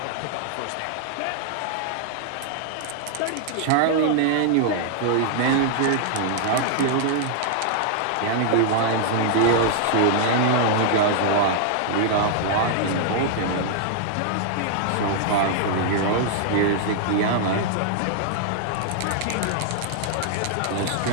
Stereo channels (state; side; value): different; both; correlation -0.01